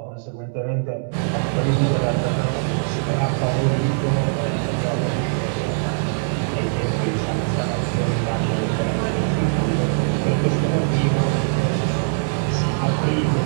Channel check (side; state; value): left; silent; 65 dB below the other